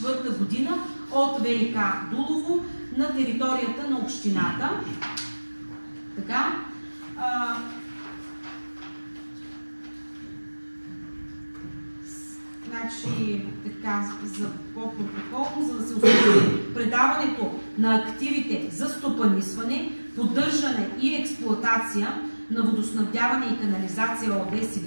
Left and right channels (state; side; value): inverted; both; correlation -1.00